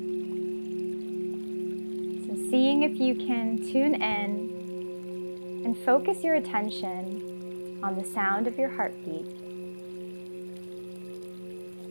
Seeing if you can tune in and focus your attention on the sound of your heartbeat.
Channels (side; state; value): both; inverted; correlation -1.00